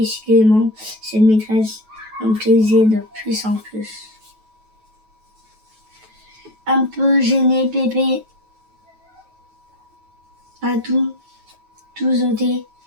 cette maîtresse me plaisait de plus en plus. Un peu gêné, Pépé a tout ôté.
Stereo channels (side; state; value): left; late; 9.2 ms